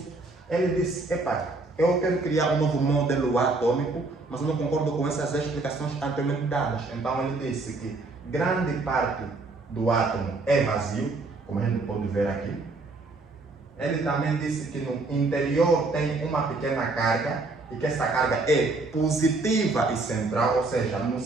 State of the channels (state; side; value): quieter; left; 3.4 dB